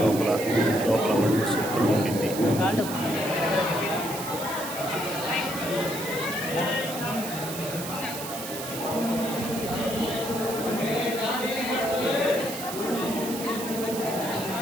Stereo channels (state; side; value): noise; right; hiss, 8 dB below the sound